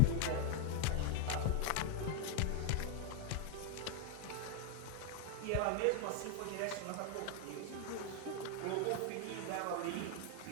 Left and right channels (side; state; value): both; different; correlation 0.01